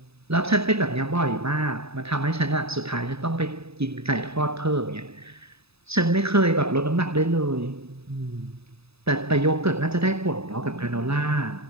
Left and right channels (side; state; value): left; late; 0.78 ms